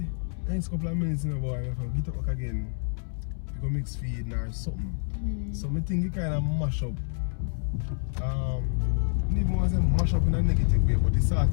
next couple of minutes, boy, you have to get up back again, you go mix feed or something. So I think you kind of mash up. I don't even want to say mash up in a negative way, but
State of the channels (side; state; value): right; silent; 59 dB below the other